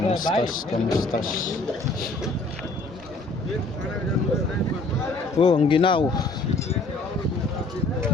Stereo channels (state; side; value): quieter; right; 3.1 dB